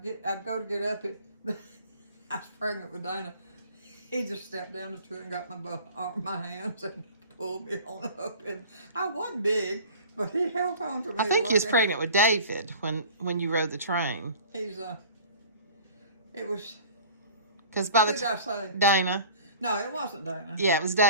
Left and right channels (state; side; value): inverted; both; correlation -0.44